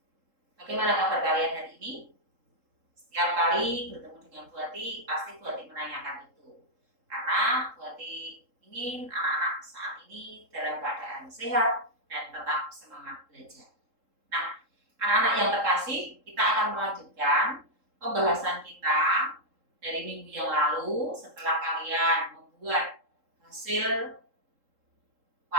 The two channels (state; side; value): late; left; 3.7 ms